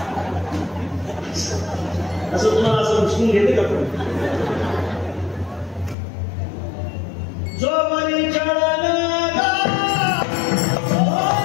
असं तुम्हाला असं उचलून घेते का? पण जो वरी चढला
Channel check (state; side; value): drops out; right; at 6.0 s